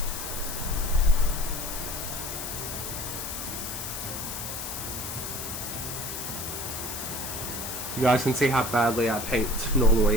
You guys can see how badly I paint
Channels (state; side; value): noise; left; hiss, 6 dB below the sound